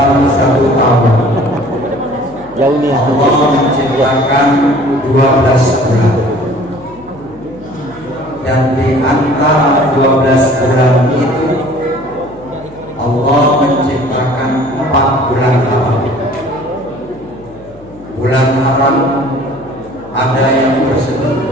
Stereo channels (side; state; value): left; noise; hum, 23 dB below the sound